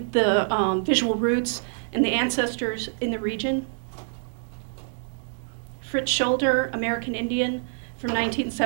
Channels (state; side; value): silent; left; digital silence